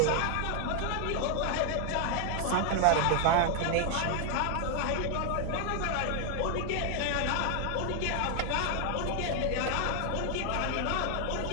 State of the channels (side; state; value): both; different; correlation 0.00